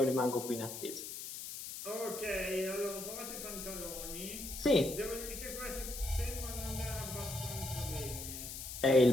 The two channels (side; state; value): left; noise; hiss, 8 dB below the sound